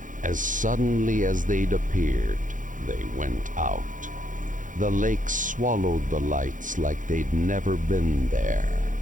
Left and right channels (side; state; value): left; late; 0.38 ms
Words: as suddenly as they'd appeared, they went out. The lake swallowed the lights like they'd never been there.